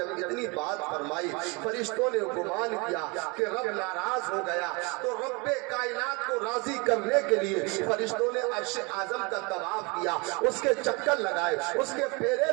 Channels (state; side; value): quieter; left; 28.8 dB